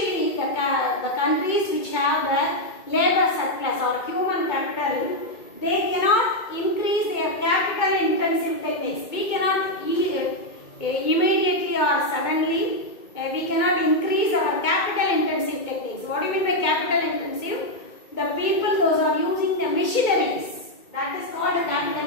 the countries which have the labor surplus or human capital, they cannot increase their capital intensive techniques. We cannot immediately or suddenly we cannot increase our capital intensive techniques. What do you mean by capital intensive? The people, those are using the machineries, that is called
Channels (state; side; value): late; right; 2.2 ms